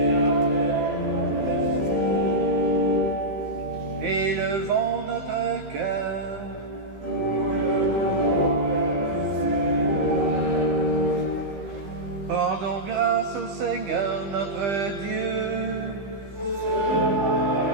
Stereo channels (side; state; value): left; late; 15 ms